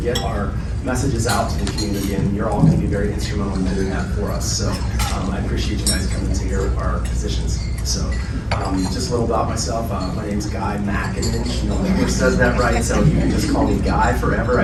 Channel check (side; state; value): both; identical; correlation 1.00